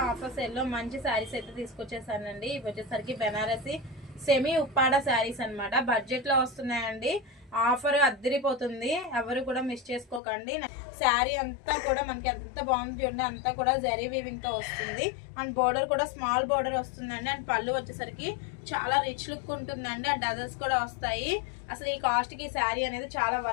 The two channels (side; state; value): right; drops out; at 10.2 s